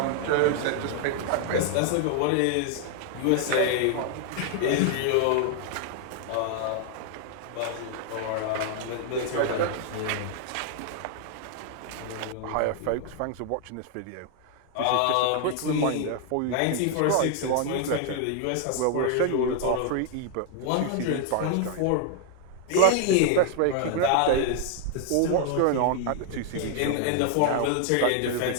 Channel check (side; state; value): both; different; correlation 0.00